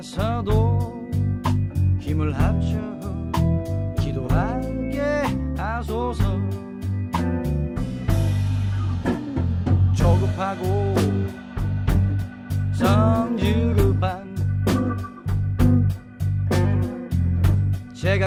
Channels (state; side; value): identical; both; correlation 1.00